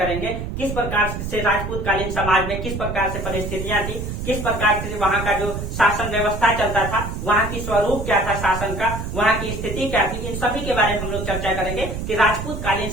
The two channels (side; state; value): right; noise; rumble, 5 dB below the sound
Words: किस प्रकार से राजपूत कालीन समाज में किस प्रकार से परिस्थितियां थी, किस प्रकार से वहां का जो शासन व्यवस्था चलता था, वहां की स्वरूप क्या था शासन का, वहां की स्थिति क्या थी, इन सभी के बारे में हम लोग चर्चा करेंगे कि राजपूत कालीन